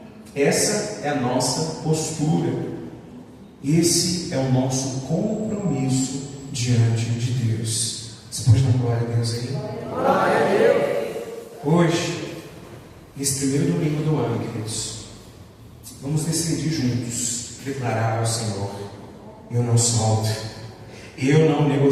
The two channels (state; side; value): identical; both; correlation 1.00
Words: Essa é a nossa postura. Esse é o nosso compromisso diante de Deus. Você pode dar glória a Deus aí? Glória a Deus. Hoje, nesse primeiro domingo do ano, queridos, Vamos decidir juntos, declarar ao Senhor: eu não solto, eu não